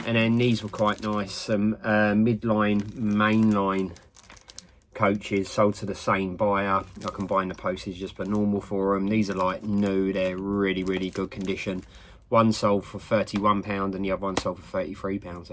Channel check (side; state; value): both; identical; correlation 1.00